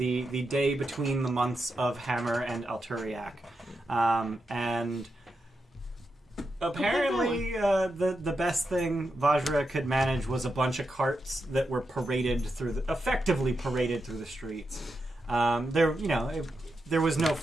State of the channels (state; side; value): normal; both; correlation 0.87